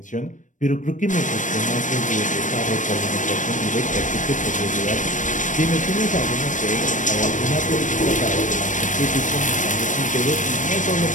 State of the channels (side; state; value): right; late; 0.37 ms